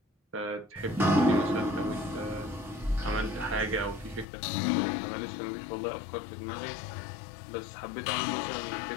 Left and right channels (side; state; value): right; drops out; at 4.2 s